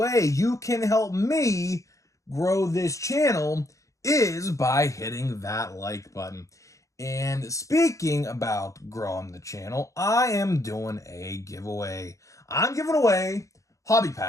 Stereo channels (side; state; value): right; late; 0.15 ms